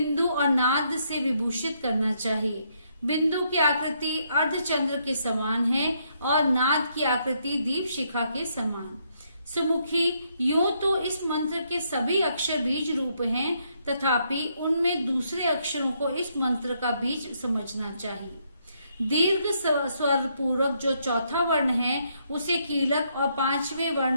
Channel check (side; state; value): both; inverted; correlation -0.74